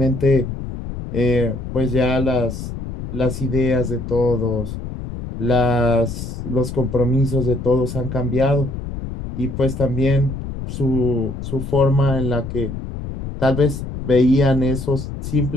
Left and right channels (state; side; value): noise; left; rumble, 7 dB below the sound